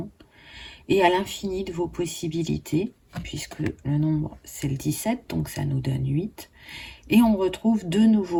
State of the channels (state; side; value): identical; both; correlation 1.00